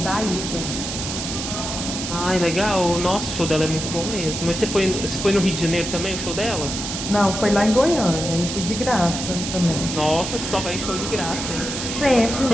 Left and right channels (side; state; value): right; noise; hiss, 5 dB below the sound